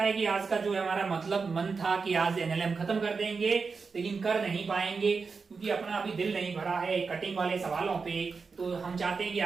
है कि आज का जो हमारा मतलब मन था कि आज एनएलएम खत्म कर देंगे, लेकिन कर नहीं पाएंगे क्योंकि अपना अभी दिल नहीं भरा है कटिंग वाले सवालों पे। तो हम चाहते हैं कि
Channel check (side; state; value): left; quieter; 4.9 dB